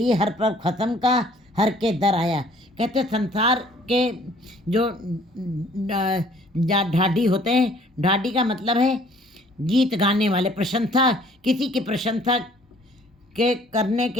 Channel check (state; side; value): normal; both; correlation 0.57